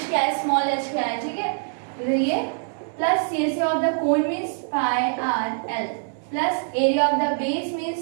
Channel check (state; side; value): silent; left; digital silence